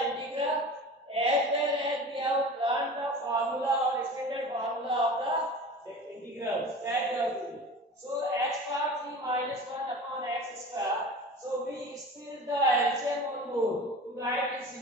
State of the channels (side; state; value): both; normal; correlation 0.36